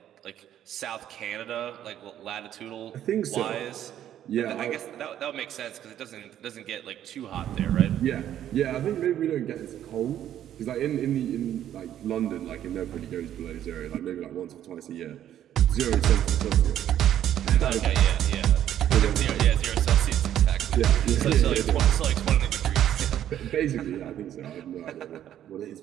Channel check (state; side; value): quieter; left; 11.1 dB